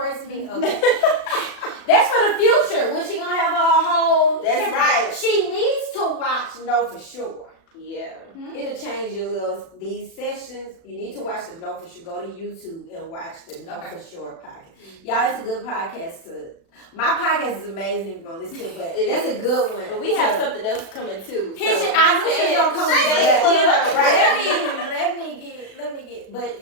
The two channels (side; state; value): right; late; 36 ms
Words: me? Okay. That's for the future. When she going to have a whole... That's right. She needs to watch Know For Sure. Yeah. It'll change these sessions. You need to watch the Know For Sure. Go to YouTube and watch the Know For Sure podcast. Y'all, it's a good podcast my podcast is amazing if you want to listen to it, but that's a good one. But we have something else coming too. I knew she was gonna come with let me get,